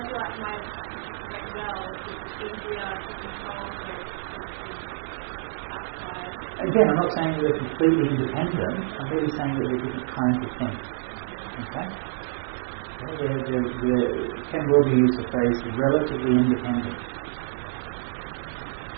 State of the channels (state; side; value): silent; left; 60 dB below the other